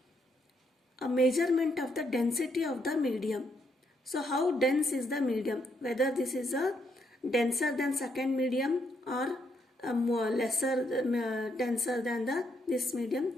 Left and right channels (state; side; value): normal; both; correlation 0.75